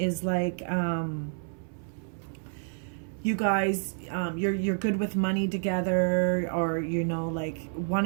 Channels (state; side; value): silent; left; 58 dB below the other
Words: like, you guys, you're good with money together, or, you know, like